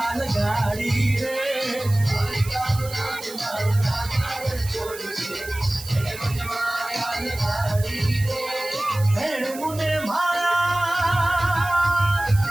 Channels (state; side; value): noise; right; hiss, 14 dB below the sound